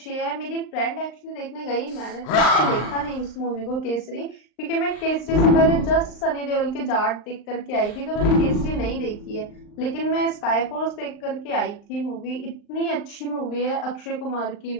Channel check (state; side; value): late; right; 39 ms